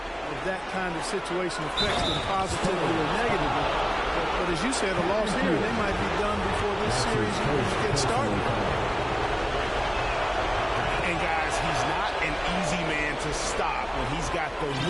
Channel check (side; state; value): both; identical; correlation 1.00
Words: that kind of situation affects them positively or negatively. But as you said, a loss here, they might be done before this series even gets started. And guys, he's not an easy man to stop when he's got the